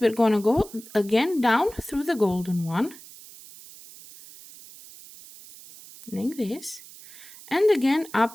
we're going to go again down through the golden one, like this, and again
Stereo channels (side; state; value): right; noise; hiss, 19 dB below the sound